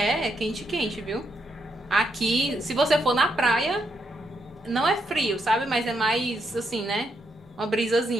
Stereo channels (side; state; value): both; normal; correlation 0.79